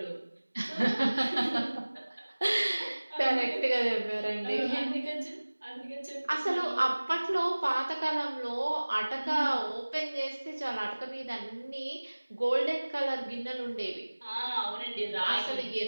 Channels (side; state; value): both; inverted; correlation -1.00